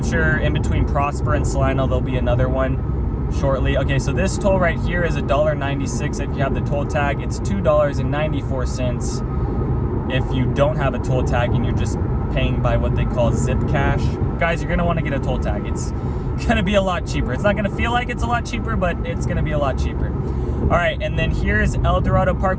sure in between Prosper and Salina, there'll be another one. shortly. Okay, so this toll right here is $1.96 if you have the toll tag. It's $2.94 if you don't have a toll tag and you're just paying by what they call zip cash. Guys, you're gonna want to get a toll tag. It's gonna be a lot cheaper. It's not gonna feel like it's a lot cheaper, but it's gonna be a lot cheaper. All right, and then here's El Dorado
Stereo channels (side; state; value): both; identical; correlation 1.00